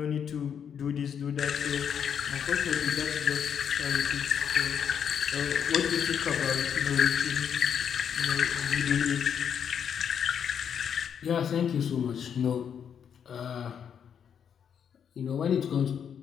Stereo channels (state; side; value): quieter; right; 7.9 dB